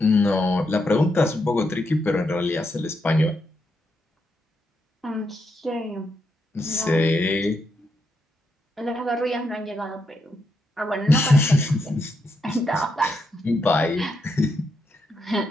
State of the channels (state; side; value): normal; both; correlation 0.81